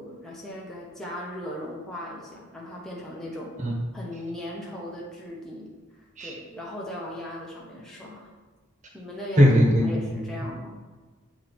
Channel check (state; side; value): normal; both; correlation 0.82